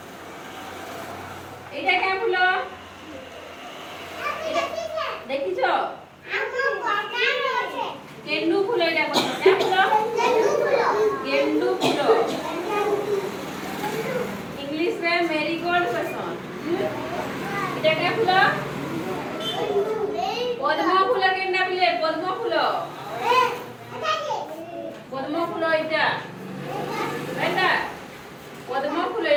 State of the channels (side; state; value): both; identical; correlation 1.00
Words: এটা কেমন ফুল দেখিছো গেন্ডু ফুল এটা কোন গেন্ডু ফুল इंग्लिश में मेरीगोल्ड पसंद এটা কে ফুল পদ্ম ফুল কেন্ডা পিলে পদ্ম ফুল এটা এটা পদ্ম ফুল